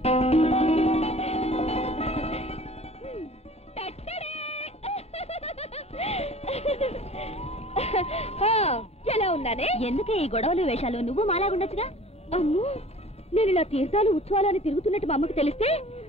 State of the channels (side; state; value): both; normal; correlation 0.46